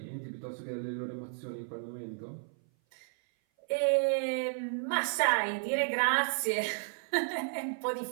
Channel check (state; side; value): silent; left; 56 dB below the other